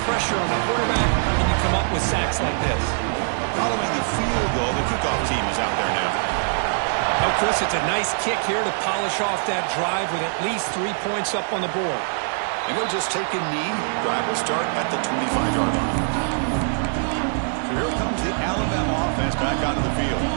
pressure on the quarterback, and you come up with sacks like this. Following the field goal, the kickoff team is out there now. Oh, Chris, it's a nice kick here to polish off that drive with at least 3 points up on the board. And he'll just take a knee. Drive will start at the 25-yard line. So here comes the Alabama offense back onto the field.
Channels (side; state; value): left; silent; digital silence